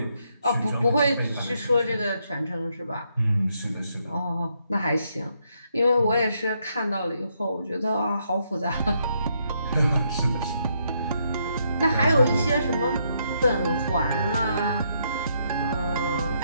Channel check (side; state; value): both; inverted; correlation -0.76